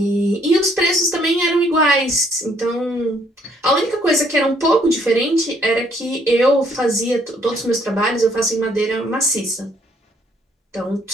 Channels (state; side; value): normal; both; correlation 0.66